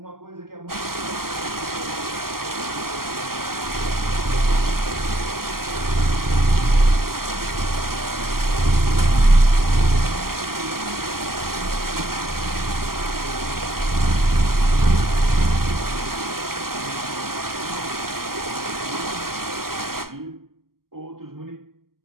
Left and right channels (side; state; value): left; late; 0.92 ms